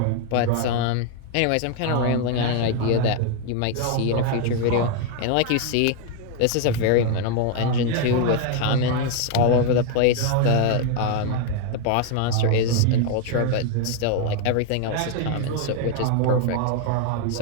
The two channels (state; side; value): different; both; correlation 0.00